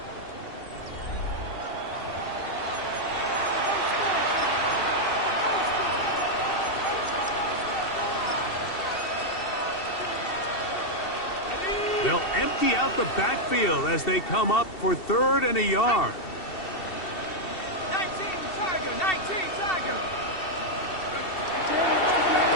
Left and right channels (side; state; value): right; late; 2.7 ms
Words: They'll empty out the backfield as they come up for third and a yard. 19 Tiger, 19 Tiger.